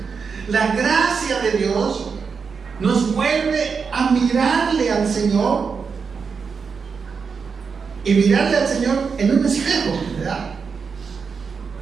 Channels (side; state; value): left; quieter; 5.6 dB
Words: La gracia de Dios nos vuelve a mirarle al Señor, y mirarle al Señor en un espejo, ¿verdad?